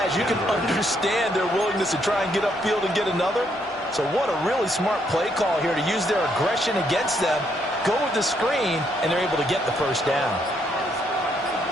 you can understand their willingness to try and get upfield and get another. So what a really smart play call here to use their aggression against them. Go with the screen, and they're able to get the first down.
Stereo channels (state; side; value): normal; both; correlation 0.73